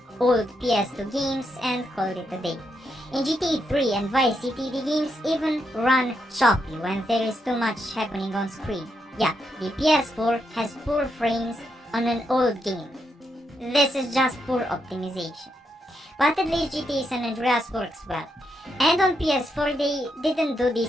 old PS2 games and called it a day. In GTA 3 and Vice City, the games even run choppy when there is too much happening on screen. Yeah, the PS4 has poor frames on an old game. This is just poor optimization. But at least GTA San Andreas works well. And on PS4 they didn't do the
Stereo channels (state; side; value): normal; both; correlation 0.81